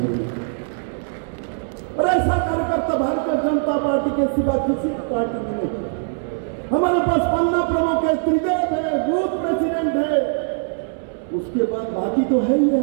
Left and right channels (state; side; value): silent; left; 65 dB below the other